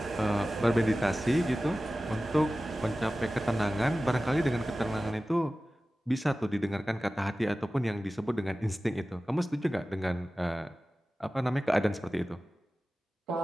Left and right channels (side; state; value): both; normal; correlation 0.96